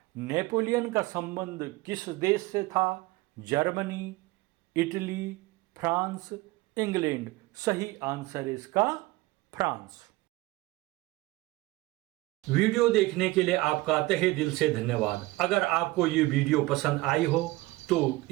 नेपोलियन का संबंध किस देश से था? Germany, Italy, France, England. सही आंसर है इसका फ्रांस। वीडियो देखने के लिए आपका तहे दिल से धन्यवाद। अगर आपको ये वीडियो पसंद आई हो तो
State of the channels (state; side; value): quieter; left; 20.2 dB